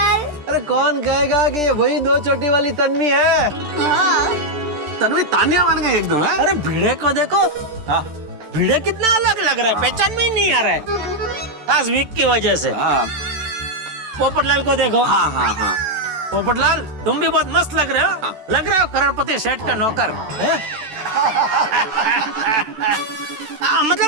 अरे कौन कहेगा कि ये वही दो चोटी वाली तन्वी है? हाँ। तन्वी तानिया बन गई एकदम है। अरे भिड़े को देखो, भिड़े कितना अलग लग रहा है, पहचान में ही नहीं आ रहा है खास वीक की वजह से। पोपटलाल को देखो। हाँ पोपटलाल तुम भी बहुत मस्त लग रहे हो। लग रहे हो करोड़पति सेठ का नौकर है?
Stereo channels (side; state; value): left; late; 13 ms